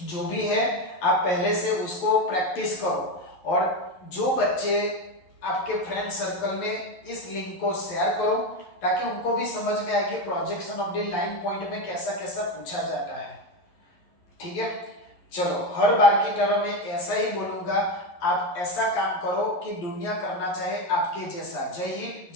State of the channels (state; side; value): late; right; 11 ms